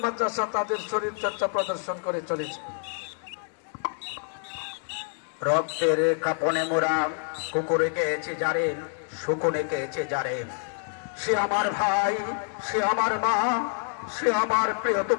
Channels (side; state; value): right; silent; 60 dB below the other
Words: মাদ্রাসা তাদের শরীর চর্চা প্রদর্শন করে চলেছে। রক্তের কাপনে মোরা কুকুরে গেছে যারে, শুকুনে গেছে যারে, সে আমার ভাই, সে আমার মা, সে আমার